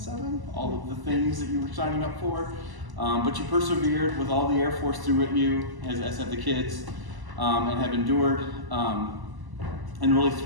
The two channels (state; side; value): late; left; 1.0 ms